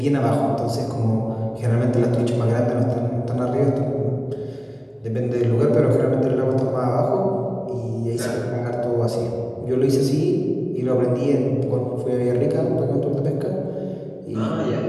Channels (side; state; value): both; identical; correlation 1.00